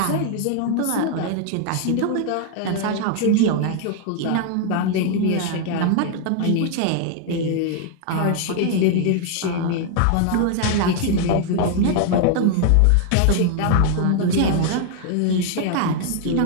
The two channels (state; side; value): different; both; correlation 0.00